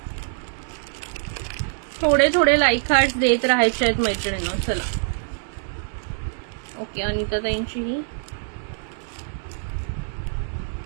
थोडे थोडे लाईक हार्ट्स देत राहायचे आहेत मैत्रिणींनो. चला. ओके, अनिता ताईंची ही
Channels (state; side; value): silent; left; digital silence